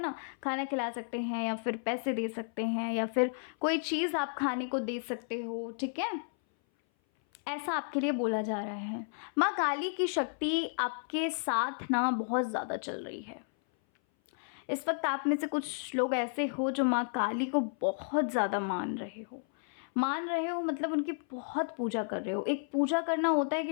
खाना खिला सकते हैं, या फिर पैसे दे सकते हैं, या फिर कोई चीज़ आप खाने को दे सकते हो, ठीक है? ऐसा आपके लिए बोला जा रहा है। माँ काली की शक्ति आपके साथ ना बहुत ज़्यादा चल रही है। इस वक्त आप में से कुछ लोग ऐसे हो जो माँ काली को बहुत ज़्यादा मान रहे हो, मतलब उनकी बहुत पूजा कर रहे हो। एक पूजा करना होता है कि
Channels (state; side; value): silent; right; 56 dB below the other